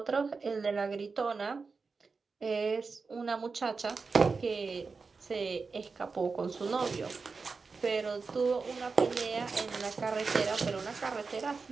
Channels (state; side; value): quieter; left; 4.6 dB